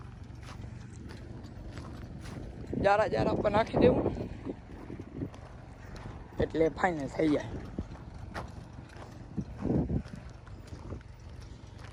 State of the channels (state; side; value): identical; both; correlation 1.00